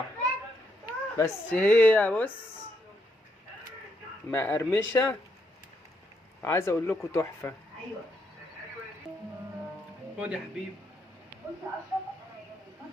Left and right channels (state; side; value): normal; both; correlation 0.77